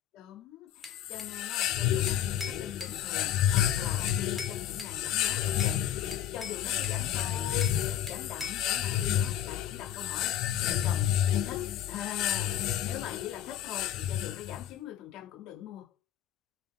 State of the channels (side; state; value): right; quieter; 10.9 dB